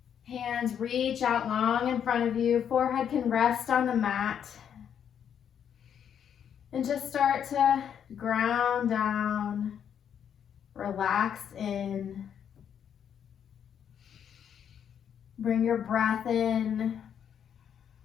Hands reach out long in front of you. Forehead can rest on the mat. And just start to ground down, relax in. Bring your breath in.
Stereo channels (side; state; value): right; quieter; 8.5 dB